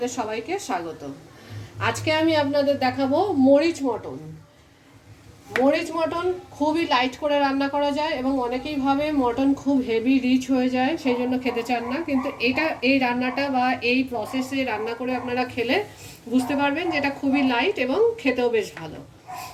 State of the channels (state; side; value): identical; both; correlation 1.00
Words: সবাইকে স্বাগত। আজকে আমি আপনাদের দেখাবো মরিচ মটন। মরিচ মটন খুবই লাইট করে রান্না করা যায় এবং অনেকেই ভাবে মটন খুব হেভি রিচ হয়ে যায়, সেই জন্য খেতে চান না। কিন্তু এই রান্নাটা বা এই প্রসেসে রান্না করে আপনারা খেলে বুঝতে পারবেন যে এটা খুবই লাইট এবং খেতেও বেশ ভালো।